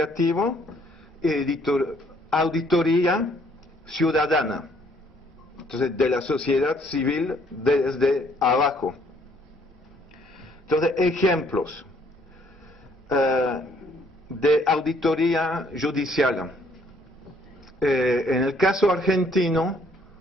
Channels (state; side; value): normal; both; correlation 0.64